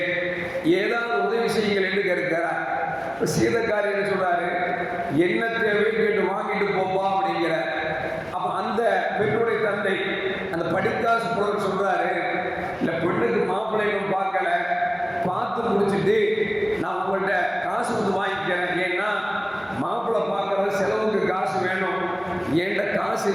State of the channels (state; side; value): identical; both; correlation 1.00